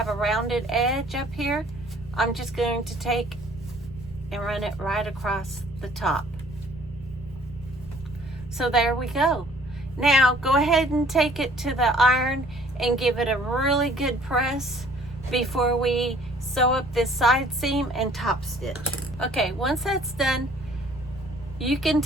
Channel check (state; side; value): noise; right; rumble, 17 dB below the sound